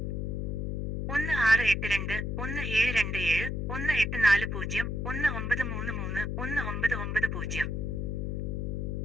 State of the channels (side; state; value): left; noise; hum, 2 dB below the sound